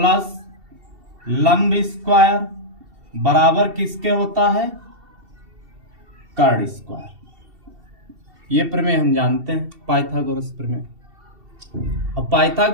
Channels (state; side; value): late; left; 2.7 ms